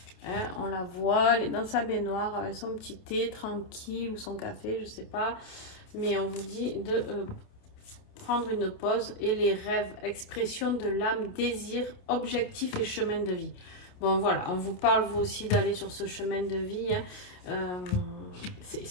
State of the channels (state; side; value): late; right; 28 ms